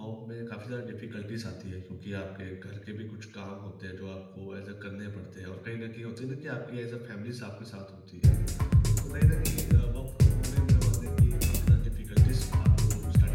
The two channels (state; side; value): identical; both; correlation 1.00